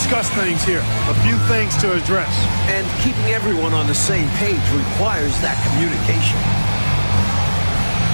things here. A few things to address. And keeping everyone on the same page requires that communication.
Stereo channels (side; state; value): both; inverted; correlation -1.00